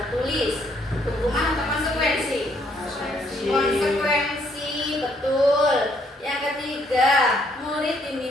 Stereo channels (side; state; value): both; normal; correlation 0.69